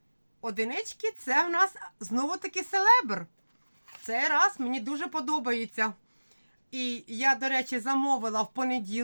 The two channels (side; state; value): both; inverted; correlation -1.00